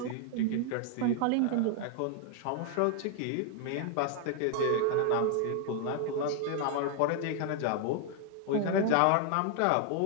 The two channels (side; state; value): both; different; correlation 0.00